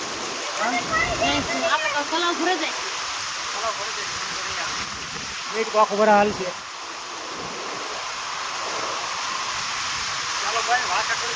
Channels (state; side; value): identical; both; correlation 1.00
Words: આખો બરા હાલ છે. ચાલો ભાઈ વાસણ